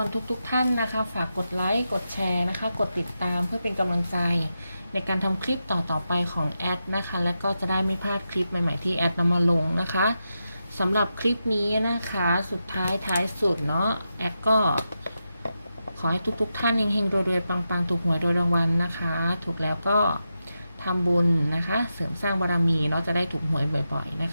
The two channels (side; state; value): both; inverted; correlation -0.88